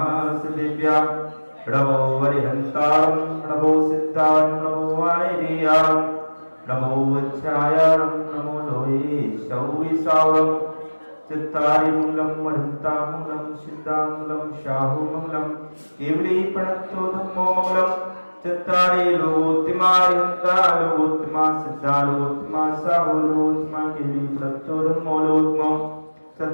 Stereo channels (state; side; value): inverted; both; correlation -1.00